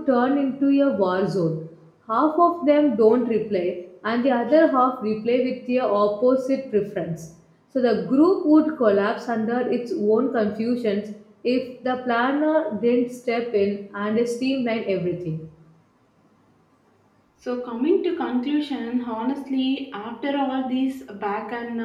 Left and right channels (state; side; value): identical; both; correlation 1.00